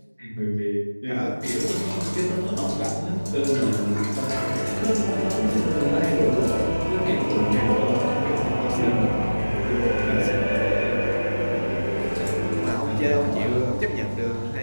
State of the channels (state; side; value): inverted; both; correlation -1.00